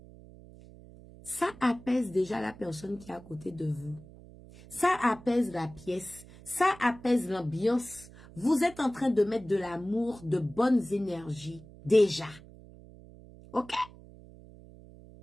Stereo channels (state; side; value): noise; right; hum, 20 dB below the sound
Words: ça apaise déjà la personne qui est à côté de vous. Ça apaise la pièce. Ça apaise l'ambiance. Vous êtes en train de mettre de l'amour, de bonnes énergies, déjà. OK?